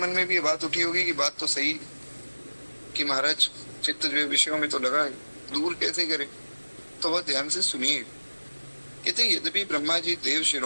में भी ये बात उठी होगी कि बात तो सही कि महाराज चित्त जो है विषयों में तो लगा है, दूर कैसे करे। तो वह ध्यान से सुनिए। कहते यद्यपि ब्रह्मा जी देव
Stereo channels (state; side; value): inverted; both; correlation -1.00